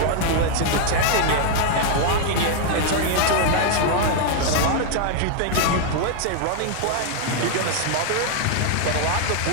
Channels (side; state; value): both; different; correlation 0.00